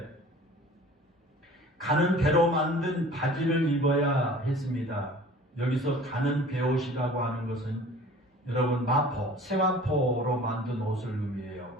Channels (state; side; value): normal; both; correlation 0.46